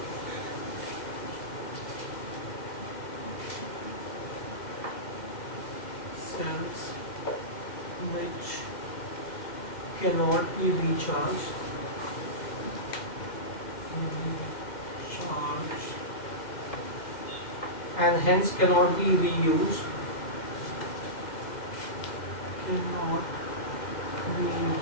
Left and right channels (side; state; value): right; late; 2.0 ms